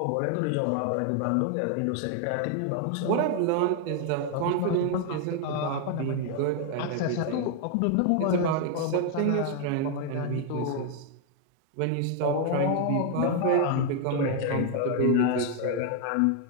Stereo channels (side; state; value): both; different; correlation 0.00